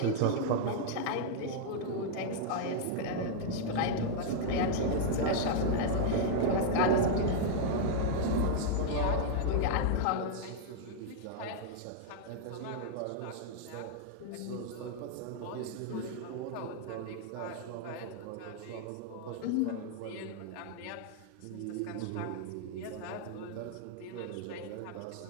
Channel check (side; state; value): both; different; correlation -0.01